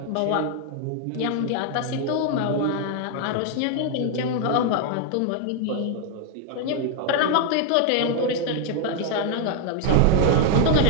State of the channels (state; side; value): different; both; correlation 0.00